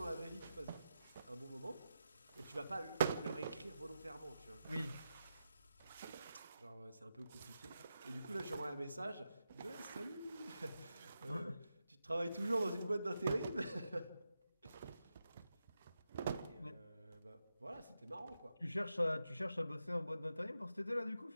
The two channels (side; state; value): both; inverted; correlation -0.88